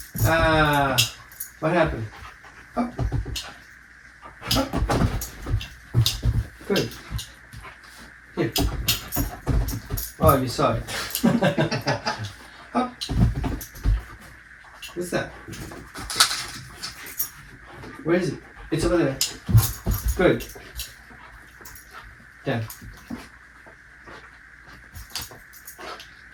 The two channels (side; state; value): both; identical; correlation 1.00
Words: What happened? Up. Up. Good. Here. Oh, you saw it. Up. What's that? Where is it? It's over there. Good. Down.